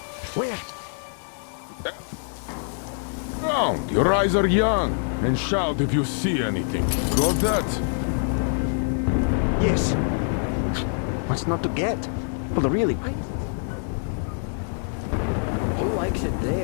Where? Everywhere. Look around. Your eyes are young. And shout if you see anything. Got that? Yes. What's not to get? Well, really, why is it so good where the heretics live? Who likes it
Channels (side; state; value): right; silent; 62 dB below the other